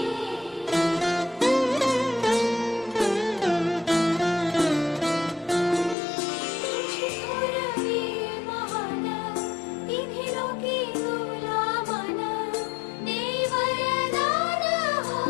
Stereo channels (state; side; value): drops out; right; at 6.0 s